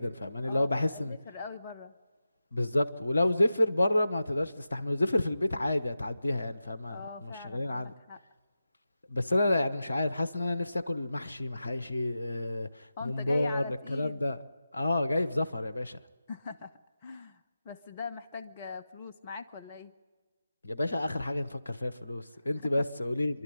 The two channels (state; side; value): inverted; both; correlation -0.92